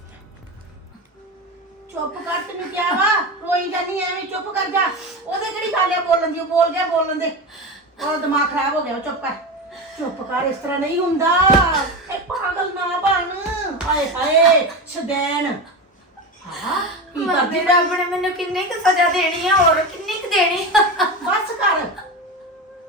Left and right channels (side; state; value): both; normal; correlation 0.22